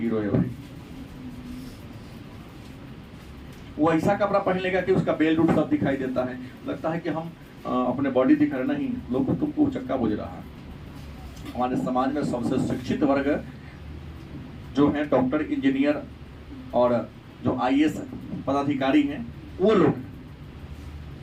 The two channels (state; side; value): identical; both; correlation 1.00